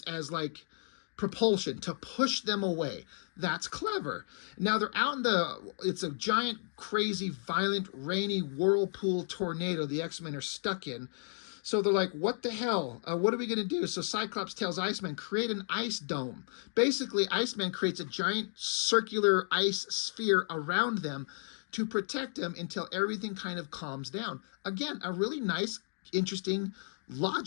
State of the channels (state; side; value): silent; right; digital silence